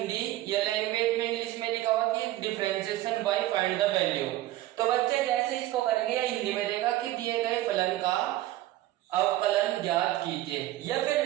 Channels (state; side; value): quieter; left; 15.4 dB